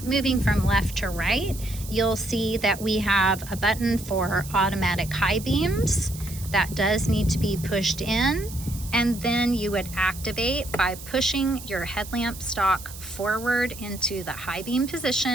moving from left to right, you'll see that we have a button for automatic high beams. That does need to be pushed in, and then you would activate by pushing your headlamp stalk forward into the high beam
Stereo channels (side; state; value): right; noise; hiss, 14 dB below the sound